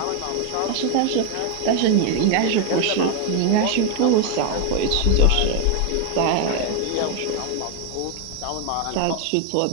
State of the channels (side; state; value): both; different; correlation 0.01